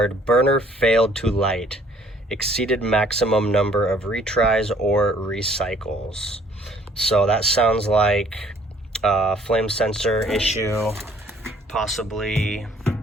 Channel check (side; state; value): both; normal; correlation 0.60